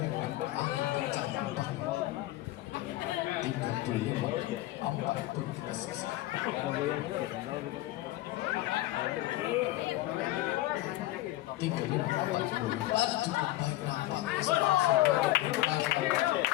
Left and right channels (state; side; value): quieter; right; 16.3 dB